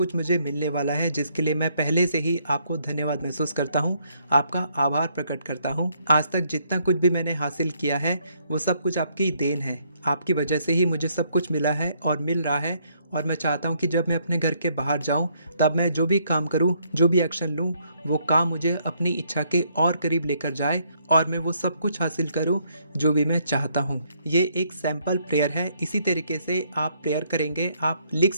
मुझे मिलने वाला है, जिसके लिए मैं पहले से ही आपको धन्यवाद महसूस करता हूँ, आपका आभार प्रकट करता हूँ। आज तक जितना कुछ भी मैंने हासिल किया है वो सब कुछ आपकी देन है। आपकी वजह से ही मुझे सब कुछ मिला है और मिल रहा है। और मैं चाहता हूँ कि जब मैं अपने घर के बाहर जाऊँ तब मैं जो भी काम करूँ, जो भी एक्शन लूँ, वो काम मुझे अपनी इच्छा के और करीब लेकर जाए और मैं वो सब कुछ हासिल करूँ जो भी मैं चाहता हूँ। ये एक सैम्पल प्रेयर है। इसी तरीके से आप प्रेयर करेंगे, आप लिख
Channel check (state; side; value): inverted; both; correlation -0.70